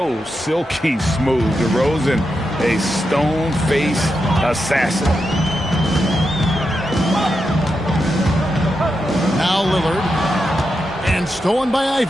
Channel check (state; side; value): normal; both; correlation 0.87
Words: silky smooth. DeRozan, a stone-faced assassin. Now Lillard. And stolen by